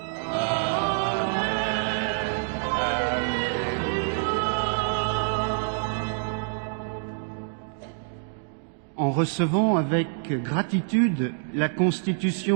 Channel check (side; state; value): left; silent; digital silence